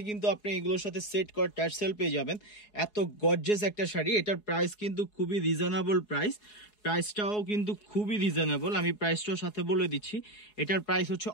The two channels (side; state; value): right; late; 4.7 ms